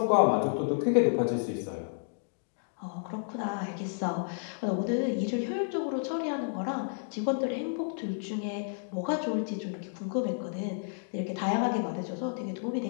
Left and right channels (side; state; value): right; silent; digital silence